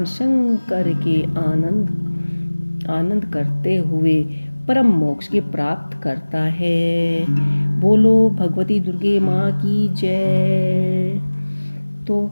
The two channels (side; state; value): both; inverted; correlation -1.00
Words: शंकर के आनंद करते हुए परम मोक्ष की प्राप्त करता है। बोलो भगवती दुर्गे माँ की जय। तो